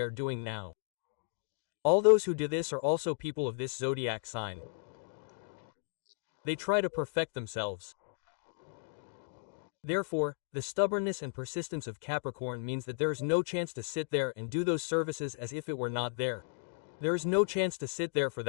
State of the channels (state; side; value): silent; right; digital silence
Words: are doing now. All those who do this are also people of this zodiac sign. They try to perfect themselves. Therefore, the stubbornness and persistence of Capricorn means that there is no chance to sit there and do those services as if it were not there. There is no chance to sit there for